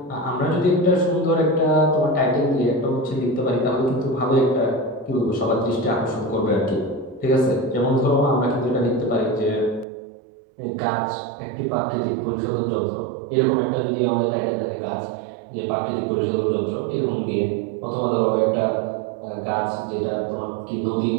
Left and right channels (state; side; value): drops out; left; at 9.9 s